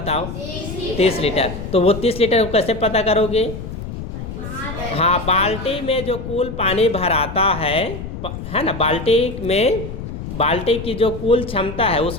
30 लीटर। तो वो 30 लीटर को कैसे पता करोगे? हाँ, बाल्टी में जो कुल पानी भराता है ना, बाल्टी की जो कुल क्षमता है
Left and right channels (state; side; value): noise; left; rumble, 8 dB below the sound